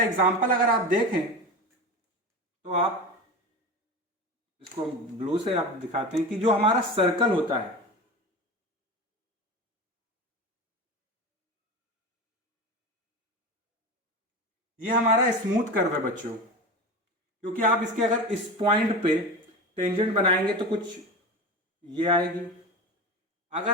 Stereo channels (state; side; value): normal; both; correlation 0.27